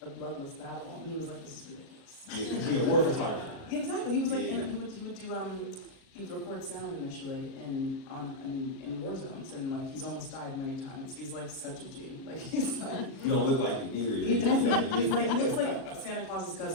a bloodless battle, and he was like, this is ridiculous. Yeah, war photographer. Yeah, exactly. He was like, Yeah. and he would do he would record sound initially in war zones, and like he's almost died many times. He's like such a G. Like he's like. You don't look like it either. He doesn't. He looks like Santa Claus's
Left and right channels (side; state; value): right; late; 37 ms